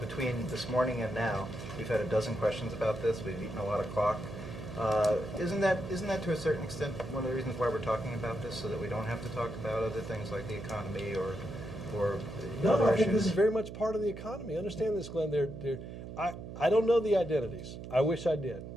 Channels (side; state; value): right; noise; hum, 10 dB below the sound